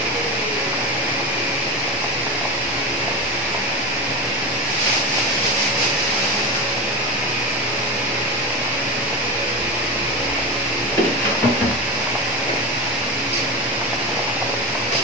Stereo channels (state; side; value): normal; both; correlation 0.20